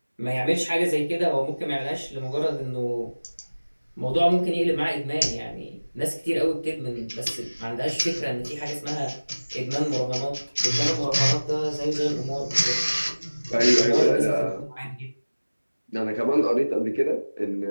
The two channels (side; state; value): both; inverted; correlation -1.00